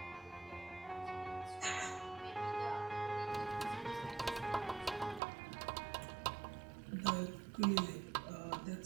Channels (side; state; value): left; drops out; at 5.2 s